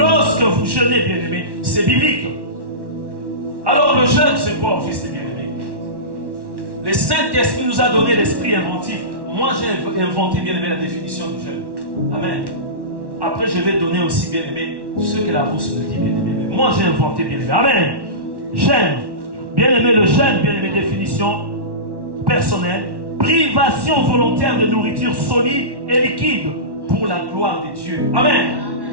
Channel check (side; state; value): left; late; 1.1 ms